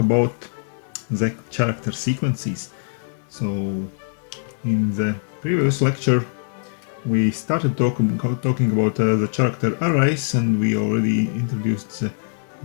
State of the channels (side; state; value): right; silent; digital silence